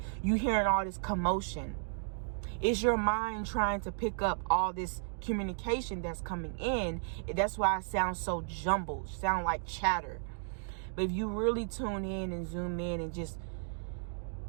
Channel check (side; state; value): left; silent; digital silence